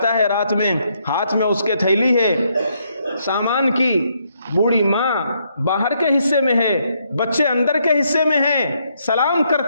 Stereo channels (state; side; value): inverted; both; correlation -0.75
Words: ہے رات میں، ہاتھ میں اس کے تھیلی ہے سامان کی، بوڑھی ماں باہر کے حصے میں ہے، بچے اندر کے حصے میں ہیں، سلام